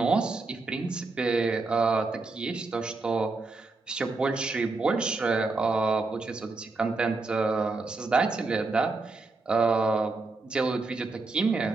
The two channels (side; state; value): left; quieter; 3.6 dB